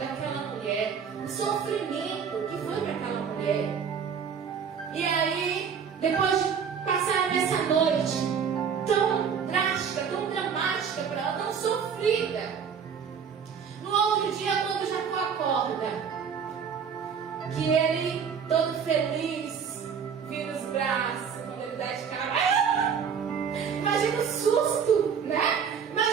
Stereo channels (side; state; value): left; quieter; 6.9 dB